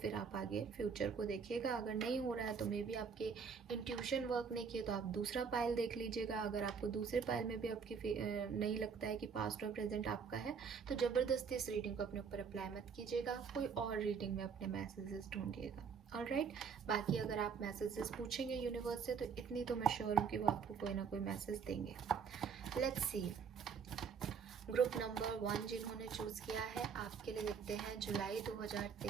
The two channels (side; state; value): left; quieter; 6.1 dB